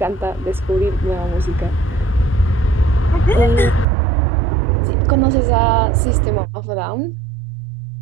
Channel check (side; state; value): left; drops out; at 3.9 s